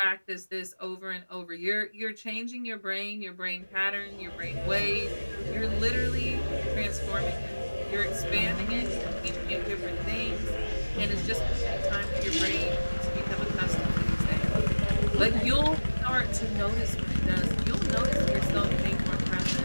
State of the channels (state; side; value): inverted; both; correlation -1.00